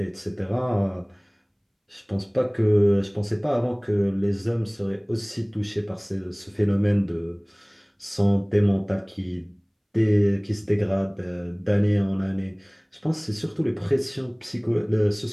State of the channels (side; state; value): both; identical; correlation 1.00